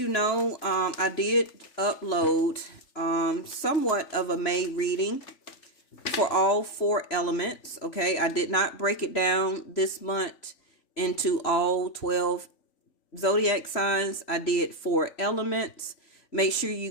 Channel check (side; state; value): right; late; 3.5 ms